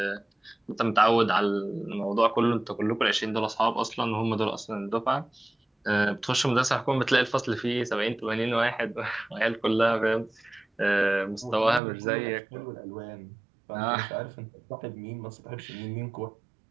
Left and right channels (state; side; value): drops out; left; at 11.8 s